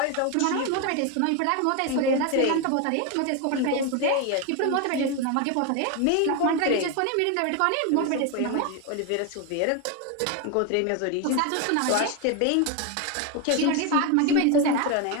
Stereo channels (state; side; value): different; both; correlation 0.02